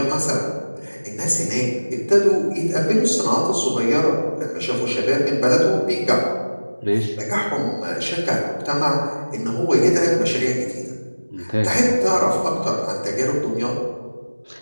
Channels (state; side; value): inverted; both; correlation -1.00